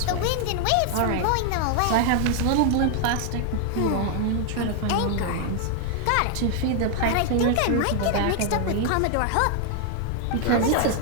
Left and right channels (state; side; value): different; both; correlation 0.00